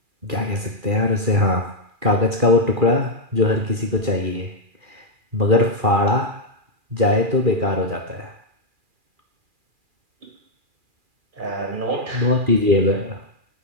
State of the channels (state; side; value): late; left; 2.4 ms